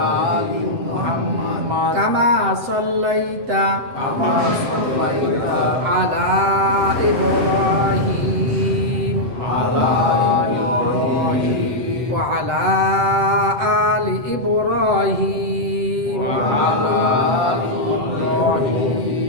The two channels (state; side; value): late; left; 7.9 ms